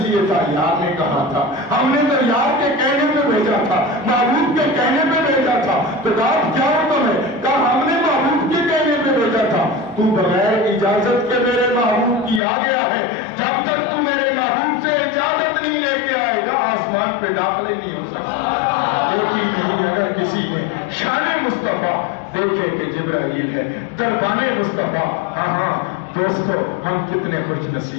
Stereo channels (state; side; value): drops out; right; at 12.4 s